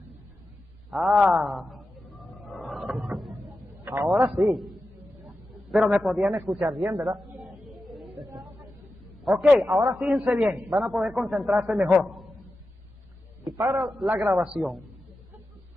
Ahora sí. Pero me podían escuchar bien, ¿verdad? Ok, ahora fíjense bien, van a poder concentrarse mejor. Y para la grabación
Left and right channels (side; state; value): both; normal; correlation 0.92